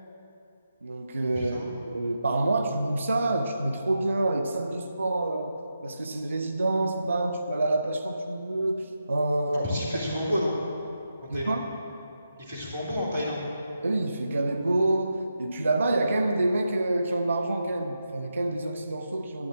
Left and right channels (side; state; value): both; inverted; correlation -0.87